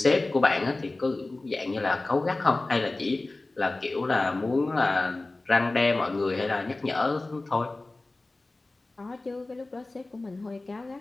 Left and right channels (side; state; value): right; quieter; 3.1 dB